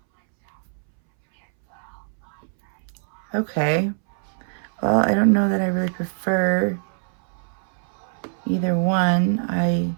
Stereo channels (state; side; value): silent; left; 63 dB below the other